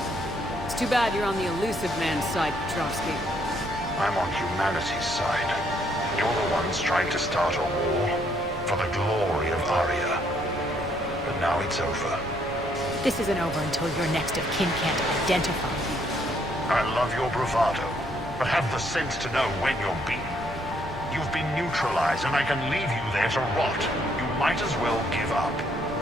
It's too bad you're on the elusive man's side, Petrovsky. I'm on humanity's side. You're the ones trying to start a war for the glory of Arya. But now it's over. This isn't over until your next of kin can't identify you. I love your bravado, but have the sense to know when you're beaten. You've been neutralized, and I can leave you there to rot. You might as well give up.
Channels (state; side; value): normal; both; correlation 0.70